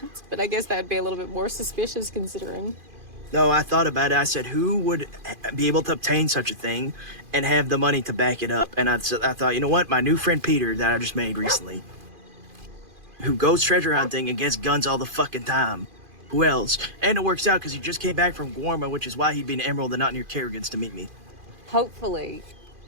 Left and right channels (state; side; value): late; left; 2.5 ms